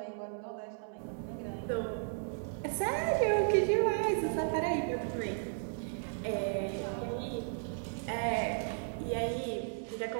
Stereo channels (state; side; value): silent; left; 55 dB below the other